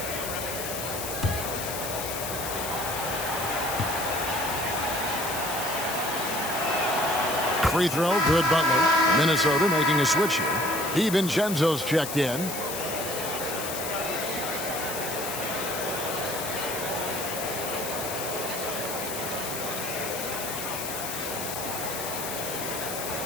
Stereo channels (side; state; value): left; noise; hiss, 6 dB below the sound